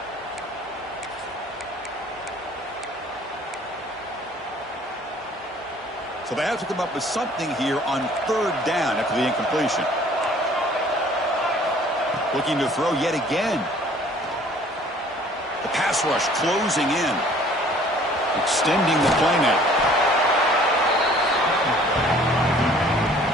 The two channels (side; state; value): both; normal; correlation 0.54